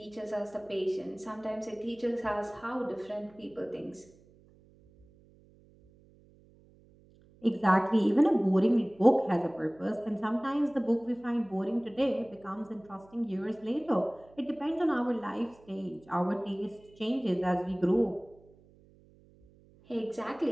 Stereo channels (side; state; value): right; noise; hum, 27 dB below the sound